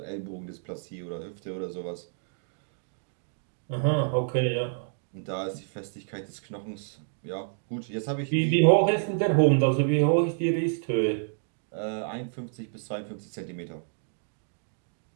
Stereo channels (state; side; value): silent; left; digital silence